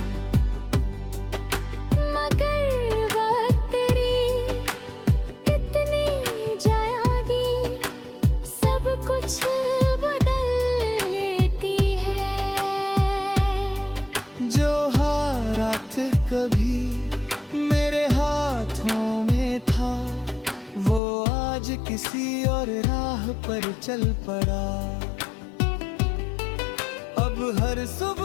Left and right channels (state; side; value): drops out; right; at 21.0 s